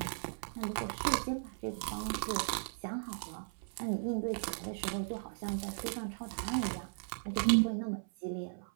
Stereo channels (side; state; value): left; silent; 53 dB below the other